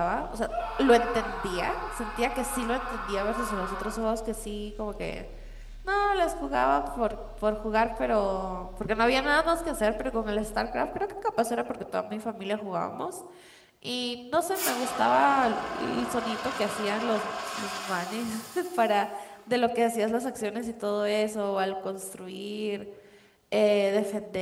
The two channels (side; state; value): both; identical; correlation 1.00